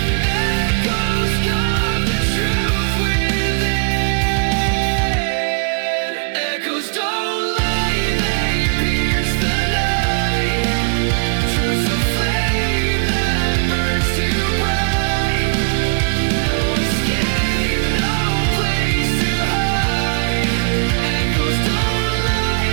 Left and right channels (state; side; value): quieter; left; 38.3 dB